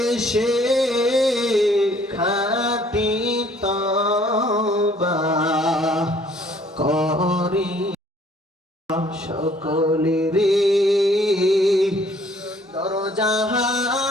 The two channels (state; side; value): normal; both; correlation 0.59